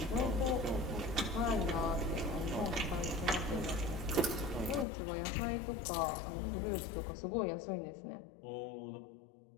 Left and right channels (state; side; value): drops out; right; at 4.9 s